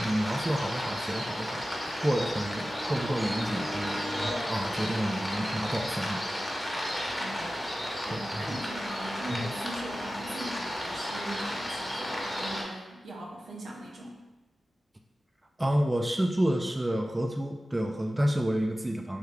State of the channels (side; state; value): both; normal; correlation 0.95